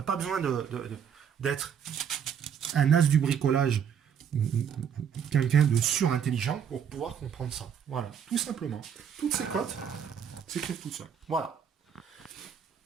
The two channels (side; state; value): left; quieter; 7.9 dB